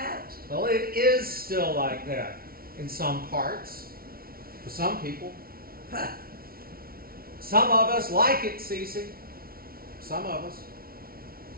Well, it is still like that in some parts, for some people. Some of us like it, Cece. Some of us.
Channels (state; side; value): late; left; 0.43 ms